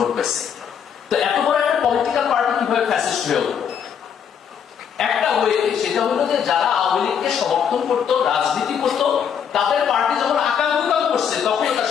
পেয়েছে। তো এত বড় একটা পলিটিক্যাল পার্টি কিভাবে ফ্যাসিস্ট হয়ে উঠল? একটা ওয়ে, সেটা হলো যে যারা আওয়ামী লীগকে সমর্থন করতো, রাজনীতি করতো, তাদের পার্টি যখন আকাঙ্ক্ষাও করছে, তখন তার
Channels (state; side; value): quieter; right; 7.8 dB